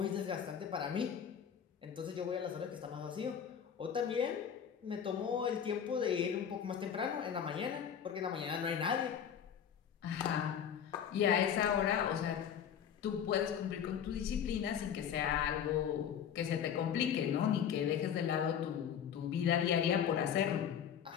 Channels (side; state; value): right; quieter; 8.4 dB